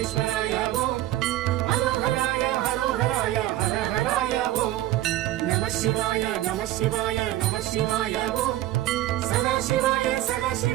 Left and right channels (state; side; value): quieter; left; 14.7 dB